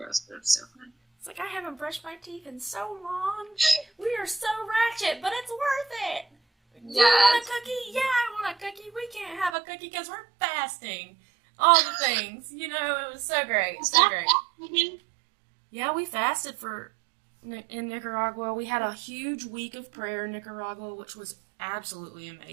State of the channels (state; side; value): drops out; left; at 9.6 s